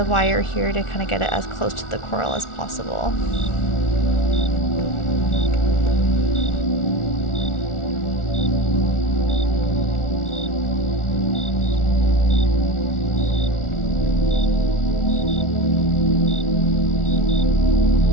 wire here to kind of get it as close to the coral as possible.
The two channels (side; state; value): right; late; 1.4 ms